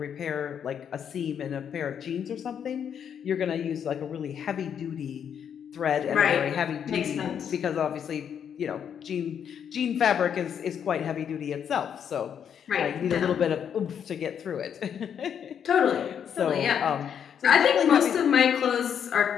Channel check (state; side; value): quieter; right; 8.2 dB